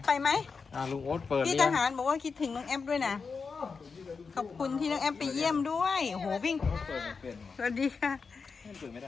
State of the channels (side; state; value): right; quieter; 5.1 dB